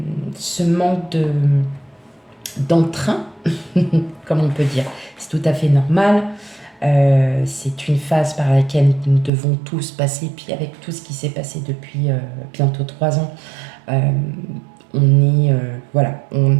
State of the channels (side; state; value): left; drops out; at 9.3 s